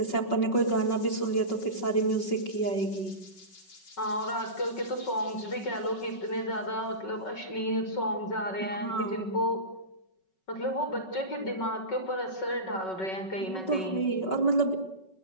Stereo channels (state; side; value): late; right; 5.3 ms